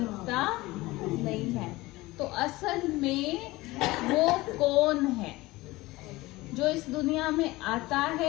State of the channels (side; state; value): right; quieter; 20.0 dB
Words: नहीं है। तो असल में वो कौन है जो इस दुनिया में आता